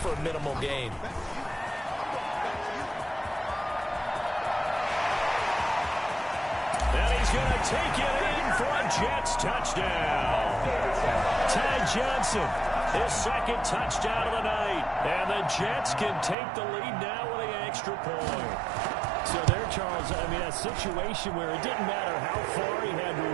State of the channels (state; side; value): drops out; left; at 16.4 s